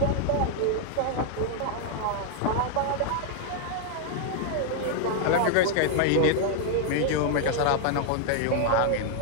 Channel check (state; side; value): different; both; correlation 0.00